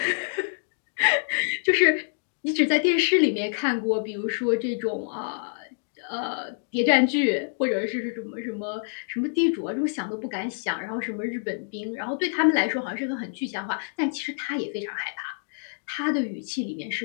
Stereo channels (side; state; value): right; silent; digital silence